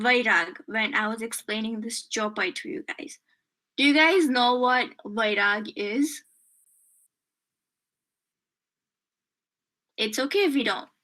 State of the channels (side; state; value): both; identical; correlation 1.00